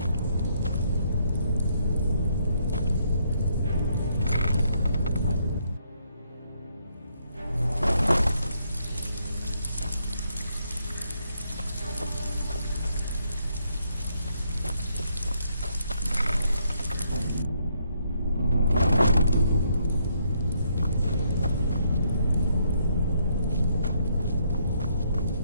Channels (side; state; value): both; inverted; correlation -0.73